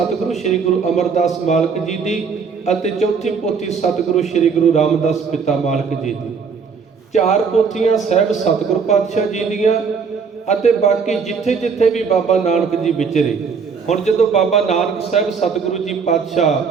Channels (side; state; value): left; quieter; 5.7 dB